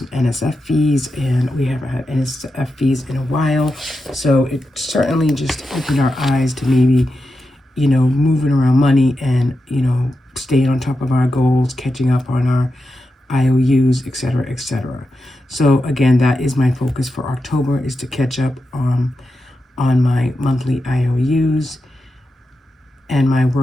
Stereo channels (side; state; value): both; normal; correlation 0.89